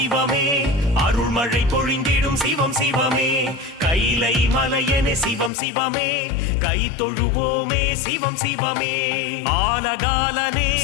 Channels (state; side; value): drops out; right; at 5.5 s